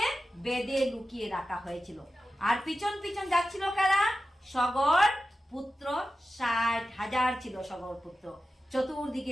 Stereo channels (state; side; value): normal; both; correlation 0.93